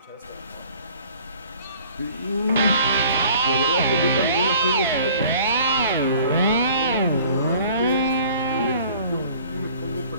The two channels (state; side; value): inverted; both; correlation -0.51